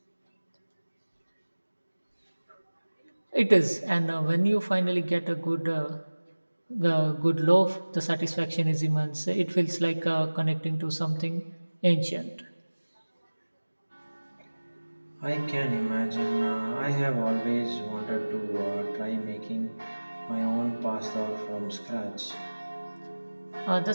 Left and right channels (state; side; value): inverted; both; correlation -1.00